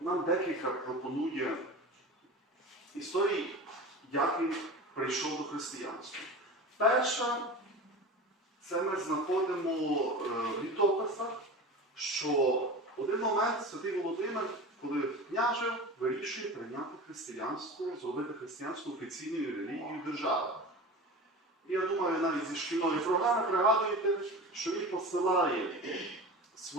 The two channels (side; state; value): both; normal; correlation 0.32